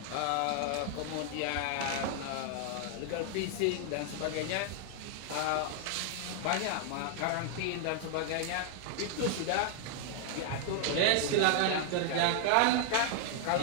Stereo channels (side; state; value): both; different; correlation 0.00